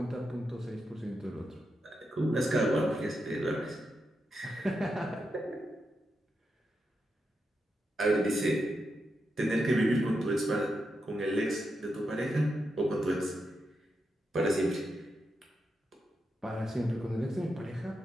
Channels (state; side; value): normal; both; correlation 0.86